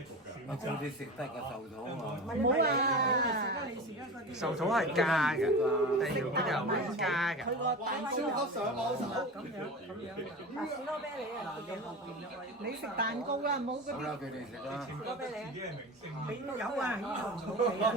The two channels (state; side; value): normal; both; correlation 0.30